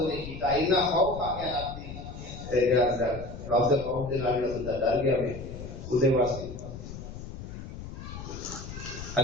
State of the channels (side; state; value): left; noise; rumble, 10 dB below the sound